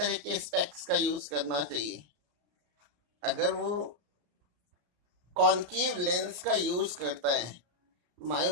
के स्पेक्स का यूज करना चाहिए? अगर वो कॉन्केव लेंस का यूज करता है,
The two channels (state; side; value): late; left; 33 ms